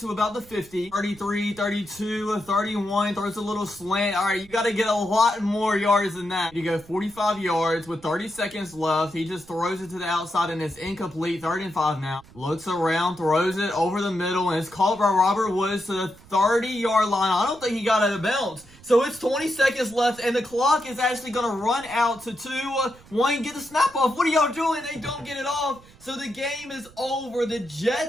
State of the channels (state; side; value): noise; right; rumble, 24 dB below the sound